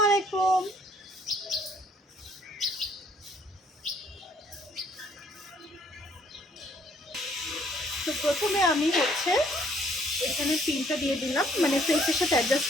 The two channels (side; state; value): both; normal; correlation 0.64